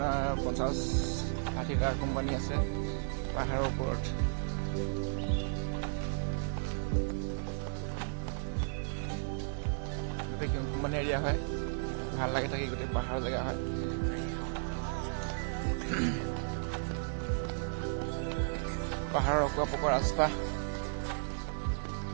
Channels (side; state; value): left; silent; digital silence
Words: 50-60টা কোম্পানী আছে পাহাৰৰ ওপৰত। গোটেই কোম্পানী এৰিয়া হয়, ভাল লাগে থাকি, গোটেই পাহাৰৰ জেগা হয়। পাহাৰৰ অকোৱা পকোৱা ৰাস্তা,